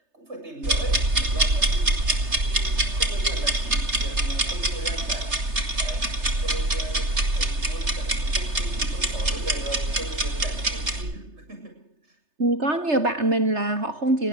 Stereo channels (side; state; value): left; late; 3.3 ms